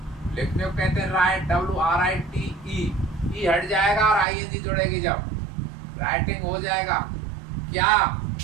लिखने को कहते हैं राइट, WRITE। ई हट जाएगा और ING जुड़ेगी जब, राइटिंग हो जाएगा। क्या?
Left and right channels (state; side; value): drops out; left; at 4.2 s